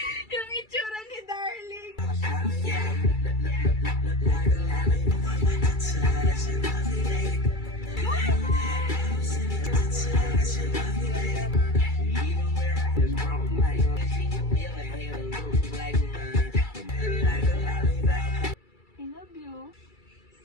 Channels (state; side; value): late; right; 2.3 ms